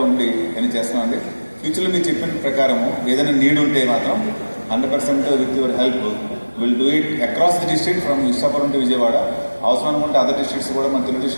ఉండి అని చేస్తున్నామండి. ఫ్యూచర్లో మీరు చెప్పిన ప్రకారము ఏదైనా నీడ్ ఉంటే మాత్రం 100% with your help will do it across the district from Visakhapatnam to Vijayawada. అవసరం అనుకుంటే అదర్ డిస్ట్రిక్ట్స్ కూడా మన తెలుగు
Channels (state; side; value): inverted; both; correlation -1.00